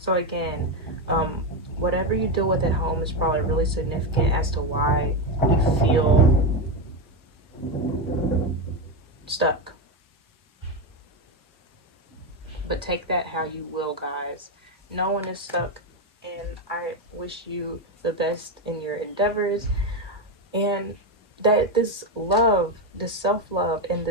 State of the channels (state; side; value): normal; both; correlation 0.10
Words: again, whatever you deal with at home is probably really significant as to why you feel stuck. But take that how you will, guys. No one is stuck, and I wish you the best in your endeavors, and that this love, this self-love, and